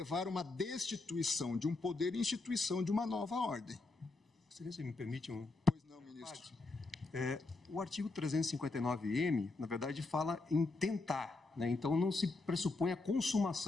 uma destituição de um poder e instituição de uma nova ordem. Se me permite um... Pois não, ministro. O artigo 359-M, na verdade, fala em tentar, né? Então não se pressupõe a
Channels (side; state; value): right; quieter; 3.4 dB